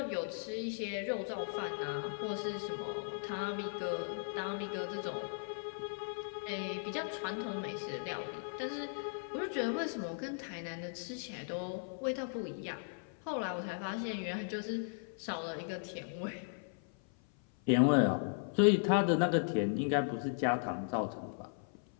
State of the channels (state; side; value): silent; right; 53 dB below the other